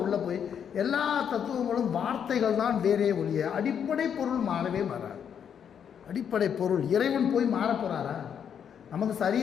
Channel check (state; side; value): quieter; right; 8.1 dB